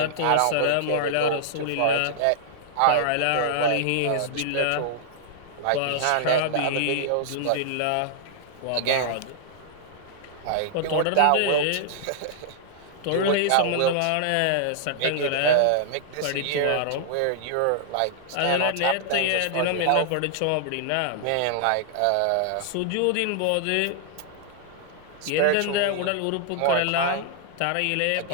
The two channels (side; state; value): both; different; correlation -0.01